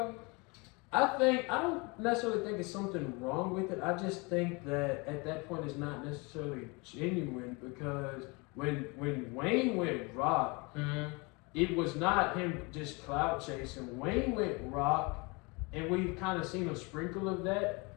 I don't necessarily think it's something wrong with it. I just think that at that point it's not necessarily genuine because when Wayne went rock, it was not him just clout chasing. Wayne went rock, and we've kind of seen a sprinkle of that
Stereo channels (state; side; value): quieter; right; 28.2 dB